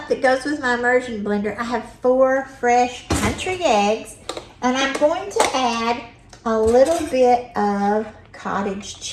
that goes with my immersion blender, I have 4 fresh country eggs, and I'm going to add a little bit of cottage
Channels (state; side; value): identical; both; correlation 1.00